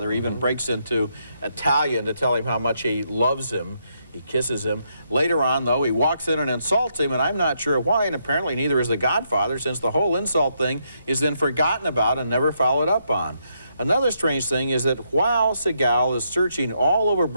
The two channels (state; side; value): inverted; both; correlation -0.77